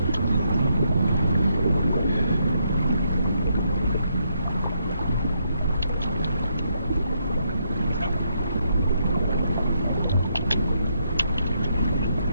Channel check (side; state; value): both; inverted; correlation -0.76